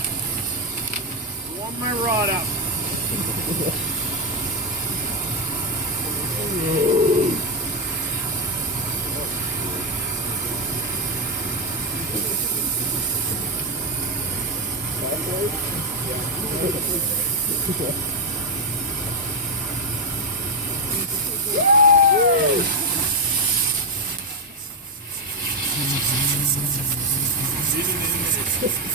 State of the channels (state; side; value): normal; both; correlation 0.04